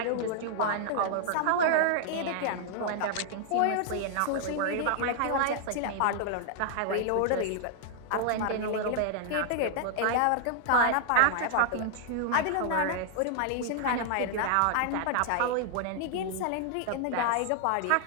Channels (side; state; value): both; different; correlation -0.01